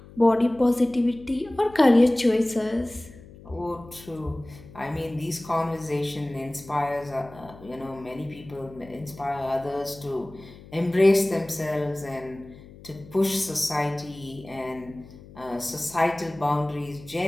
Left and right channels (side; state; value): left; noise; hum, 19 dB below the sound